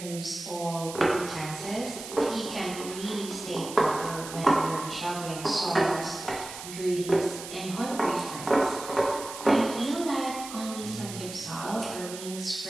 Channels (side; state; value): right; noise; hiss, 11 dB below the sound